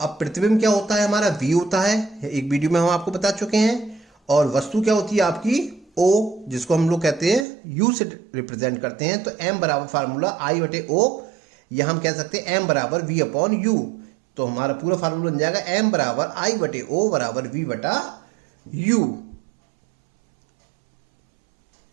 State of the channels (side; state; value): left; drops out; at 7.5 s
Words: अब प्रतिबिंब क्या होता है? हमारा V होता है, एक वीडियो में हम आपको बता चुके हैं। और वस्तु क्या होती है आपकी? O, जिसको हम लोग कहते हैं U से रिप्रेजेंट करते हैं। तो m बराबर फार्मूला I बटे O, या हम कह सकते हैं m बराबर V अपॉन U। तो हमारा पूरा फार्मूला बन जाएगा m बराबर I बटे O बराबर V बटा U।